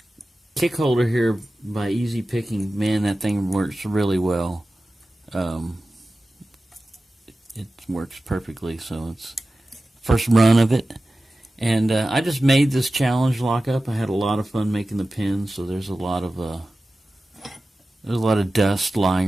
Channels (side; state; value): both; normal; correlation 0.95